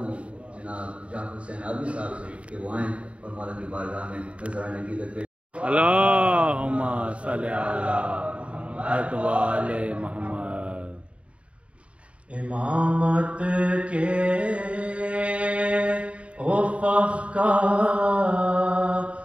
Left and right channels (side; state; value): left; late; 0.062 ms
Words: جناب جعفر حسین آبی صاحب سے کہ وہ آئیں اور مولا کی بارگاہ میں نذرانہ عقیدت پیش۔ اللہم صلی علی محمد و آل محمد۔ امامت کے افق کا